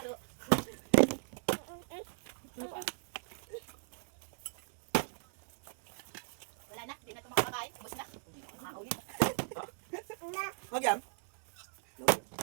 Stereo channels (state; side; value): silent; left; 53 dB below the other